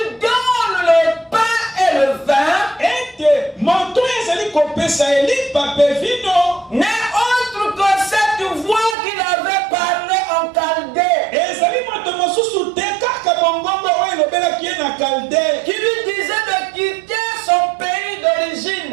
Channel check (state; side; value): drops out; left; at 9.0 s